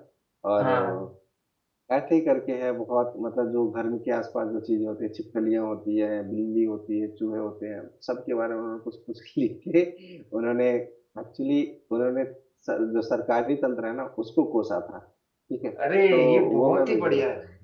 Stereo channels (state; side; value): identical; both; correlation 1.00